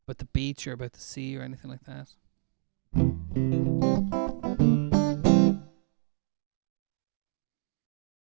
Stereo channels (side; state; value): left; silent; digital silence